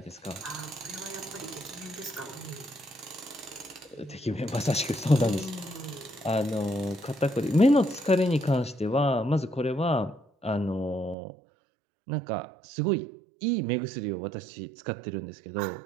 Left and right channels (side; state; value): left; drops out; at 11.2 s